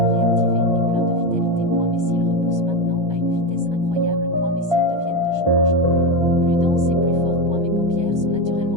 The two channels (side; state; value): left; late; 1.2 ms